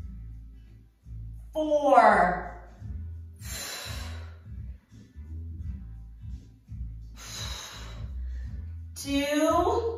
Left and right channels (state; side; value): identical; both; correlation 1.00